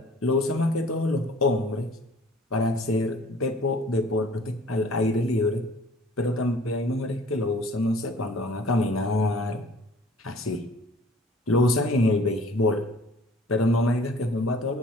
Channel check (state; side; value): normal; both; correlation 0.51